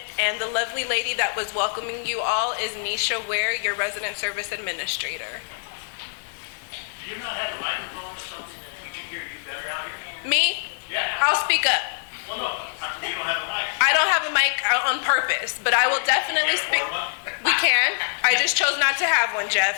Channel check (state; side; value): silent; right; 62 dB below the other